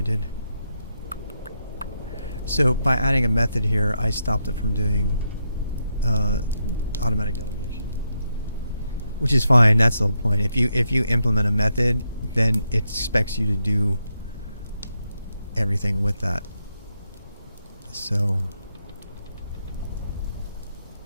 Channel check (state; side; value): inverted; both; correlation -0.83